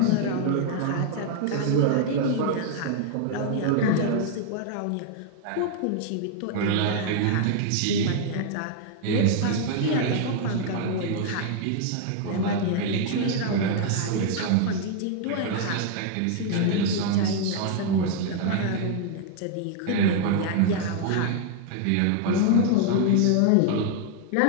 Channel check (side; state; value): both; different; correlation 0.00